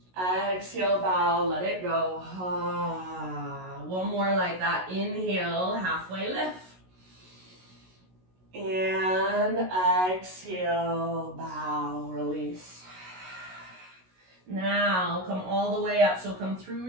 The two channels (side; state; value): left; late; 16 ms